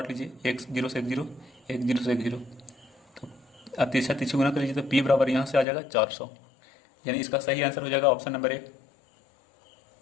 लीजिए, 1 0 से 1 0, 1 0 से 1 0, तो अब तीसरा गुना कर लीजिए तो P बराबर यहाँ से आ जाएगा 400, यानी इसका सही आंसर हो जाएगा ऑप्शन नंबर 1।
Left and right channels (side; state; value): right; drops out; at 5.7 s